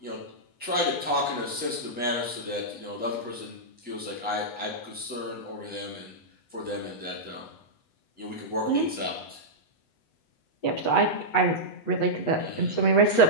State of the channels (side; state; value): right; late; 8.1 ms